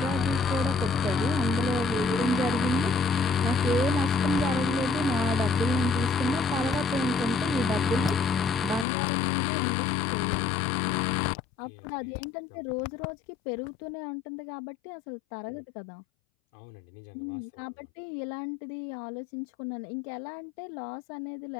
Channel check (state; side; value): drops out; right; at 8.8 s